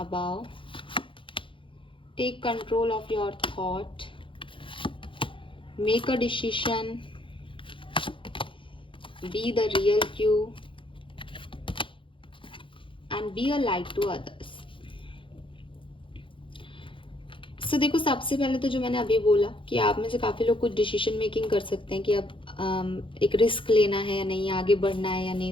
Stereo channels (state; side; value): late; right; 0.25 ms